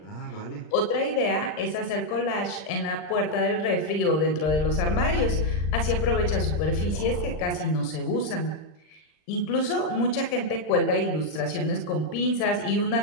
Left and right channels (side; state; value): right; late; 39 ms